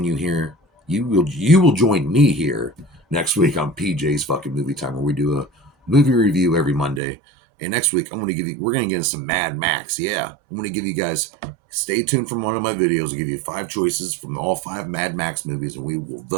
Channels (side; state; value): left; drops out; at 7.0 s